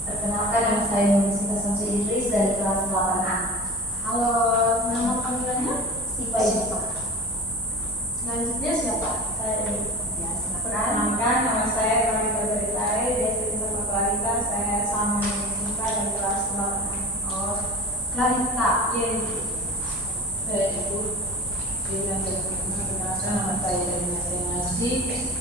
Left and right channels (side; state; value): both; normal; correlation 0.34